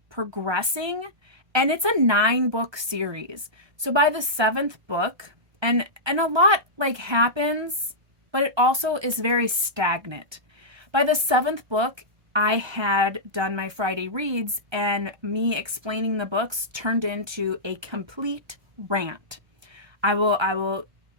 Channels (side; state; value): left; late; 1.3 ms